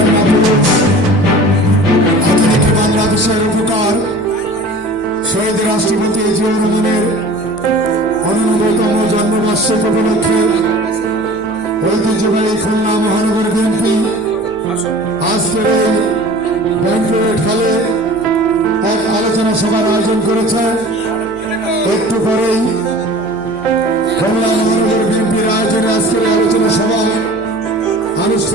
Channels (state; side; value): noise; left; hum, 22 dB below the sound